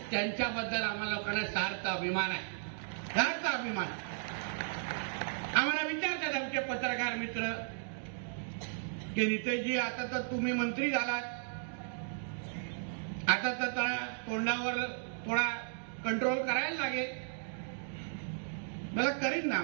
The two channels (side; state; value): left; silent; digital silence